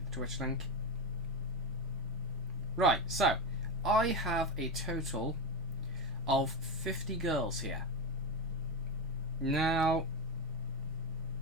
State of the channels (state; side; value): normal; both; correlation 0.15